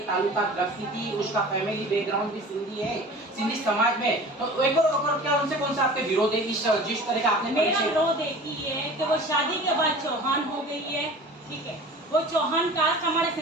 ताल्लुकात रखती थी, उसका फैमिली बैकग्राउंड भी सिंधी है, सिंधी समाज में, तो एक और क्या उनसे कौन सा आपके विरोध है? जिस तरह का आपने मेरा विरोध एक ही है कि वो शादी के बाद चौहान हो गई है, ठीक है, वो चौहान कास्ट हमारे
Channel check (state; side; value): normal; both; correlation 0.41